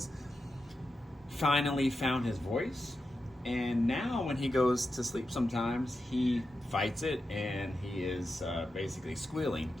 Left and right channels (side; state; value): both; normal; correlation 0.89